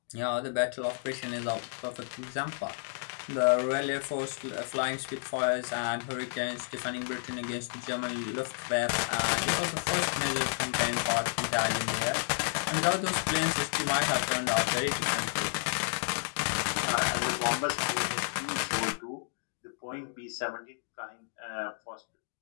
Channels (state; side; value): silent; right; digital silence